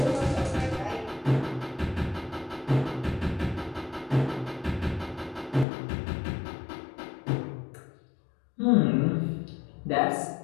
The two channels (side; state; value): right; drops out; at 5.7 s